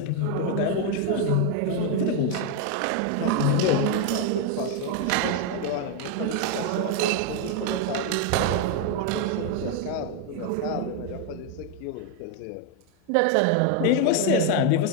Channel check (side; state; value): both; different; correlation 0.01